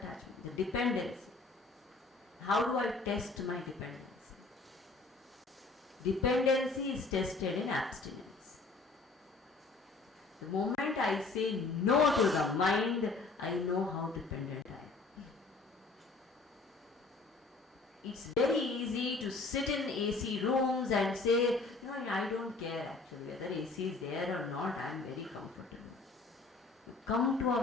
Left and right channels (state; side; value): quieter; right; 3.8 dB